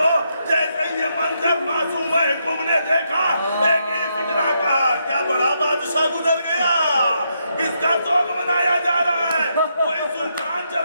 जैसे ये मंजर मासूम कुम ने देखा, एक ही फिक्रा कहा, क्या बड़ा बादशाह गुजर गया, किसका शौक मनाया जा रहा है, कोई सुल्तान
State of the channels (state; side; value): inverted; both; correlation -0.79